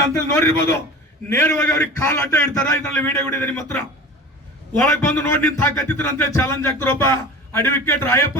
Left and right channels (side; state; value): both; normal; correlation 0.36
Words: ಅಂತೇಳಿ ನೋಡಿರ್ಬೋದು. ನೇರವಾಗಿ ಅವ್ರಿಗೆ ಕಾಲ್ ಅಡ್ಡ ಇಡ್ತಾರ. ಇದರಲ್ಲಿ ವಿಡಿಯೋ ಇದೆ ನಿಮ್ಮ ಹತ್ರ. ಒಳಗೆ ಬಂದು ನೋಡಿ ನಿಂತು ಹಾಕತ್ತಿದ್ರು ಅಂತ ಚಾಲೆಂಜ್ ಆಗ್ತಾರ ಒಬ್ಬ ಅಡ್ವೊಕೇಟ್ ರಾಯಪ್ಪ